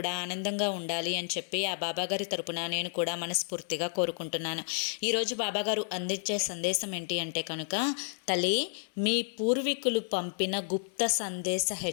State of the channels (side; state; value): right; silent; digital silence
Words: ఆనందంగా ఉండాలి అని చెప్పి ఆ బాబాగారి తరపున నేను కూడా మనస్ఫూర్తిగా కోరుకుంటున్నాను. ఈరోజు బాబాగారు అందించే సందేశం ఏంటి అంటే కనుక, తల్లి, మీ పూర్వీకులు పంపిన గుప్త సందేశ